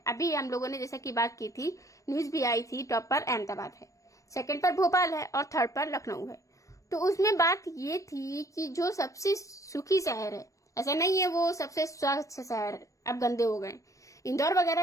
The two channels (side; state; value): right; late; 0.16 ms